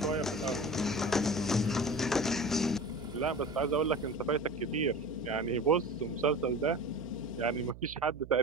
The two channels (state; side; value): noise; right; hum, 16 dB below the sound